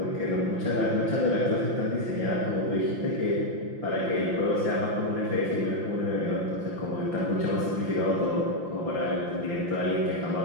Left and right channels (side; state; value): left; late; 5.8 ms